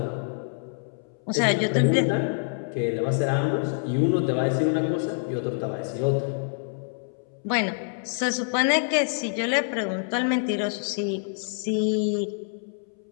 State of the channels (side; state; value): right; silent; 61 dB below the other